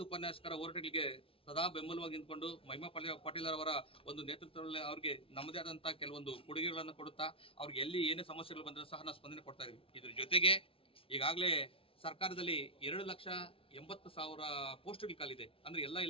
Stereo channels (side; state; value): right; late; 0.26 ms